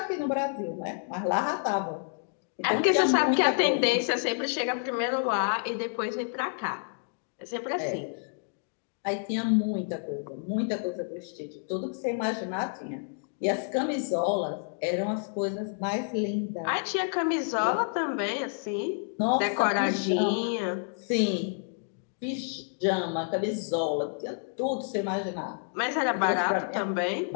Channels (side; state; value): right; silent; digital silence